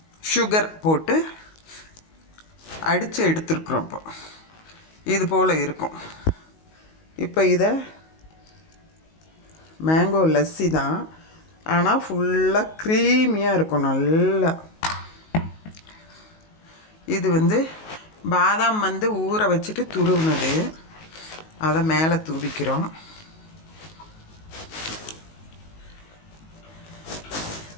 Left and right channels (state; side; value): late; right; 19 ms